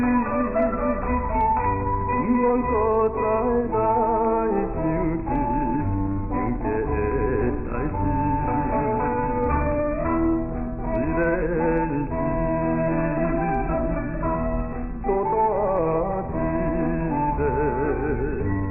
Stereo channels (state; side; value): identical; both; correlation 1.00